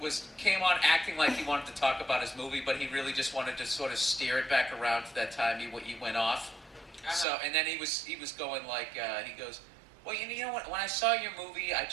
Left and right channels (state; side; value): drops out; left; at 7.2 s